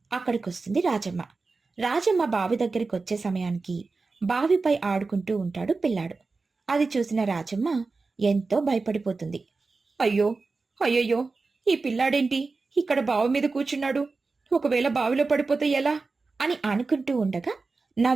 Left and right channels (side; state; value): left; quieter; 4.0 dB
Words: అక్కడికొస్తుంది రాజమ్మ. రాజమ్మ బావి దగ్గరికి వచ్చే సమయానికి బావిపై ఆడుకుంటూ ఉంటాడు పిల్లాడు. అది చూసిన రాజమ్మ ఎంతో భయపడిపోతుంది. అయ్యో, అయ్యయ్యో, ఈ పిల్లాడేంటి ఇక్కడ బావి మీద కూర్చున్నాడు? ఒకవేళ బావిలో పడిపోతే ఎలా అని అనుకుంటూ ఉండగా